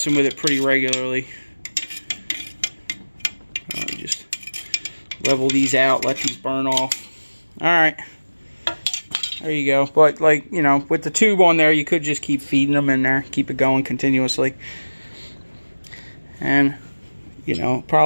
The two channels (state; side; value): inverted; both; correlation -1.00